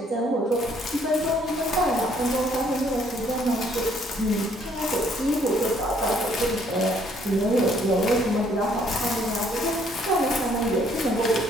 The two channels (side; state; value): both; normal; correlation 0.65